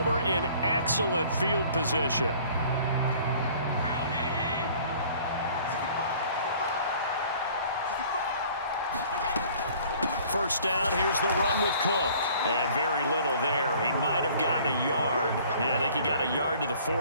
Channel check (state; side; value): inverted; both; correlation -0.53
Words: in excellent field position. First down, here's the run with Cook. And very little there. He might have gotten a yard. Yeah, I think he got a yard to the